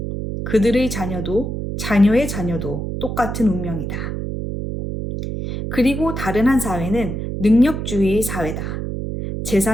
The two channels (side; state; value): right; noise; hum, 4 dB below the sound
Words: 그들의 자녀도 자녀의 자녀도 똑같은 운명이다. 그리고 다른 한 사회는 능력주의의 사회다.